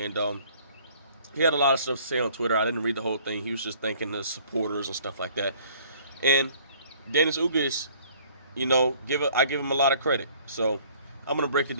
he had a lot of stuff to say on Twitter. I didn't read the whole thing. He was just thanking the supporters and stuff like that. And Dennis Ugas, I give him a lot of credit. So I'm gonna break it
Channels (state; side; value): inverted; both; correlation -0.56